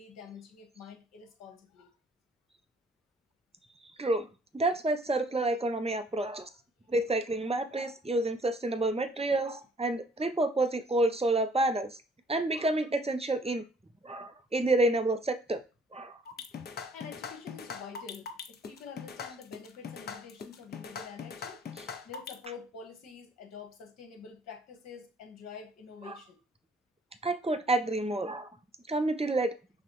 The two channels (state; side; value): normal; both; correlation 0.60